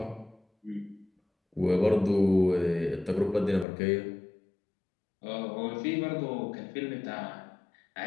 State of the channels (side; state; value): right; drops out; at 3.7 s